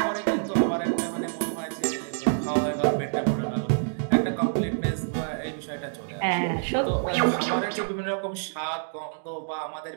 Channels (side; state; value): left; silent; digital silence